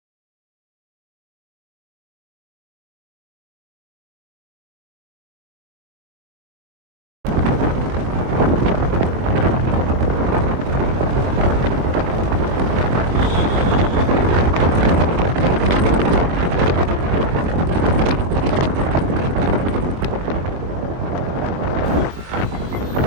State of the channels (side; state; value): left; late; 22 ms